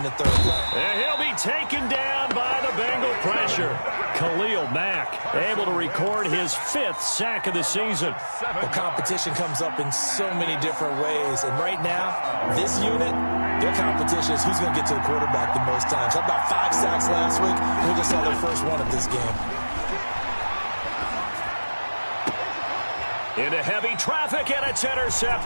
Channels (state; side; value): inverted; both; correlation -1.00